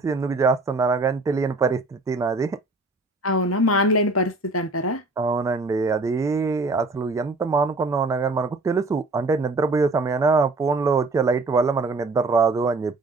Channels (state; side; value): quieter; left; 3.1 dB